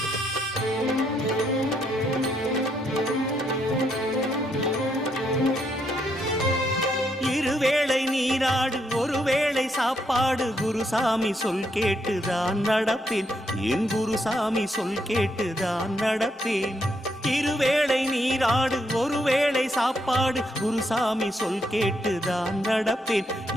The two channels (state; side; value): normal; both; correlation 0.76